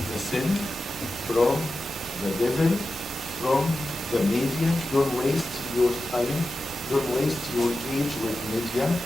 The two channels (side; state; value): both; normal; correlation 0.92